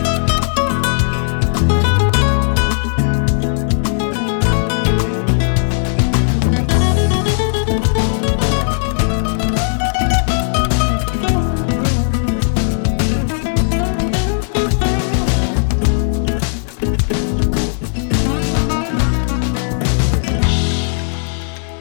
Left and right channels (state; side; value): silent; right; 69 dB below the other